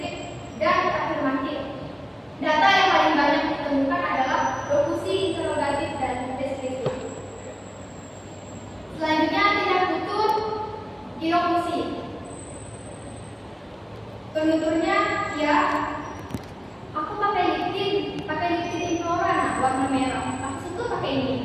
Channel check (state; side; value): identical; both; correlation 1.00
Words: dan afirmatif. Data yang paling banyak ditemukan adalah lokusi interrogatif dan deskriptif. Selanjutnya tindak tutur ilokusi. Penuturnya, ya, aku pakai liptin Inflora warna merah. Aku suka pakai ini.